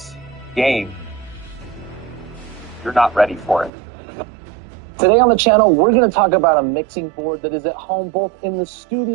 game, you're not ready for it. Today on the channel, we're going to talk about a mixing board that is at home both in the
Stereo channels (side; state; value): left; drops out; at 3.7 s